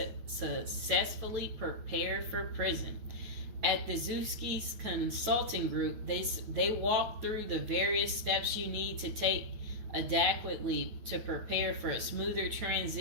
prepare for prison. At the Zuski's Consulting Group, they walk through the various steps you need to take adequately to prepare for a smoother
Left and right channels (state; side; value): late; left; 9.1 ms